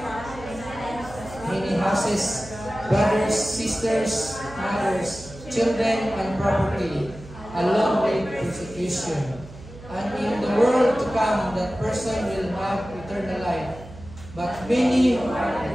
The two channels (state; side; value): noise; right; hum, 17 dB below the sound